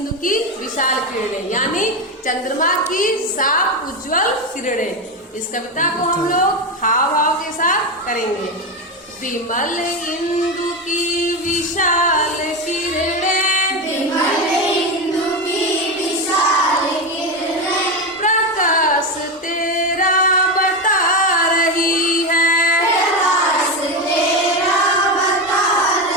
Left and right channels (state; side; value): normal; both; correlation 0.15